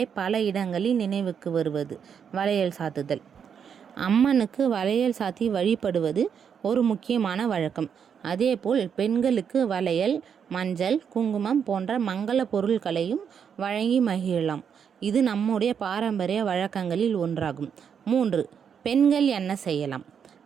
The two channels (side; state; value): left; quieter; 7.4 dB